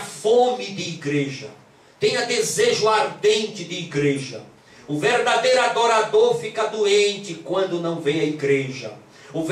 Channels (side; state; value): both; identical; correlation 1.00